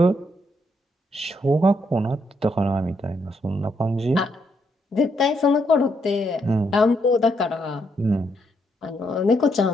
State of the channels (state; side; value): normal; both; correlation 0.76